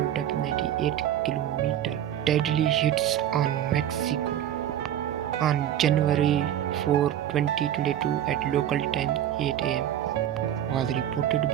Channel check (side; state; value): left; quieter; 11.0 dB